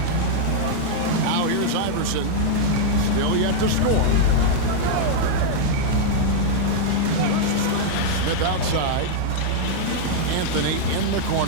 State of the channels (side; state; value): both; different; correlation -0.01